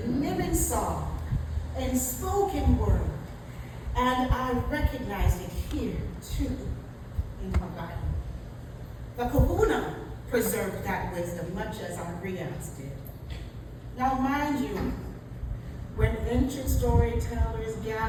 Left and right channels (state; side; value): identical; both; correlation 1.00